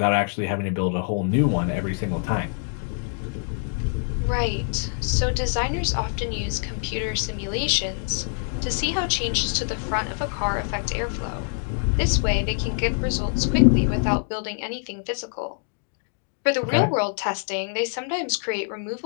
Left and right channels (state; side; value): silent; right; 62 dB below the other